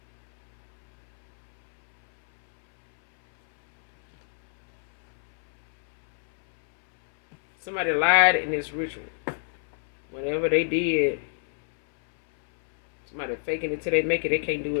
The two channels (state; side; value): silent; right; 62 dB below the other